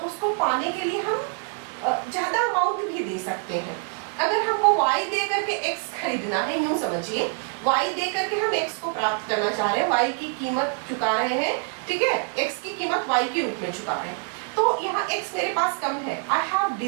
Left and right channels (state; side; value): quieter; left; 38.0 dB